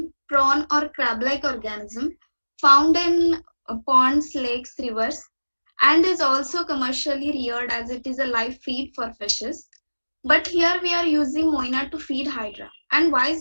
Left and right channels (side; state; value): both; inverted; correlation -1.00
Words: prawn or crab-like organism found in ponds, lakes, rivers, and is also commercially reared as it is a live feed for fishes. But here we are using moina to feed hydra. And why